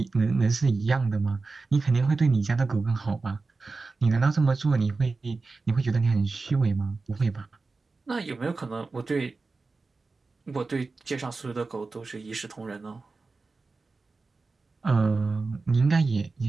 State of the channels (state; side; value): quieter; left; 3.9 dB